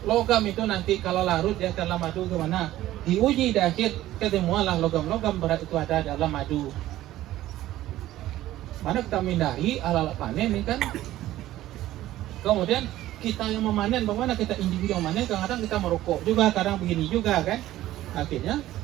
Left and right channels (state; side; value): quieter; left; 14.7 dB